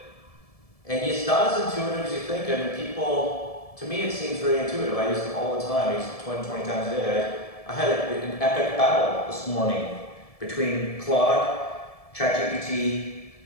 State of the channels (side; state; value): right; late; 1.7 ms